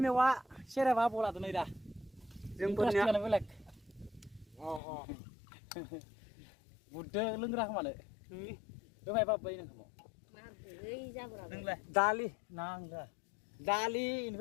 मेवा सेरेबा आबौ लादो नै दा जोंफोरनियानो बेलेग बुददो लोंग्रा खोमानो दोहाय बाबै नोंखौ दालि नांला दालि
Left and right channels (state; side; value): drops out; right; at 4.8 s